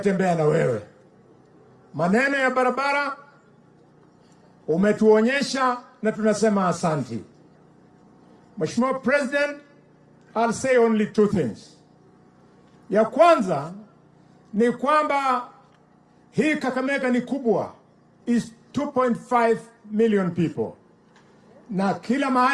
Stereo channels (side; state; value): both; identical; correlation 1.00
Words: na wewe. Maneno ya barabara umetuonyesha na tunasema asanti. Mheshimiwa President, I'll say only two things. Ya kwanza ni kwamba hii Kakamega ni kubwa, is 2.5 million people. Na kila